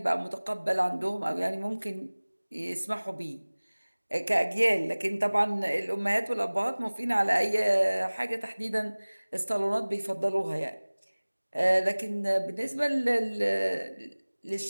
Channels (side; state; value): both; inverted; correlation -1.00